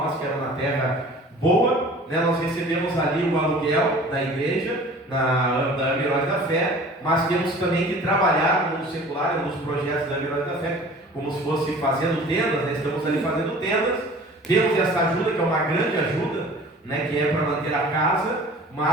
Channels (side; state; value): both; normal; correlation 0.45